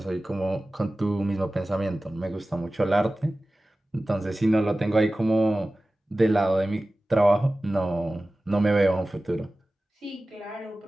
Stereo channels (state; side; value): normal; both; correlation 0.96